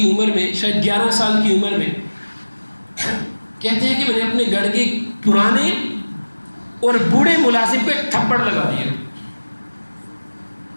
عمر میں، شاید 11 سال کی عمر میں، کہتے ہیں کہ میں نے اپنے گھر کے پرانے اور بوڑھے ملازم کو ایک تھپڑ لگا دیا۔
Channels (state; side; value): inverted; both; correlation -1.00